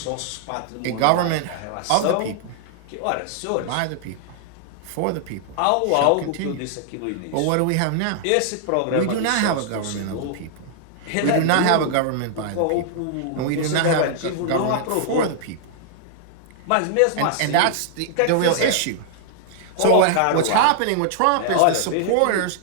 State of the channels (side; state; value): both; different; correlation -0.01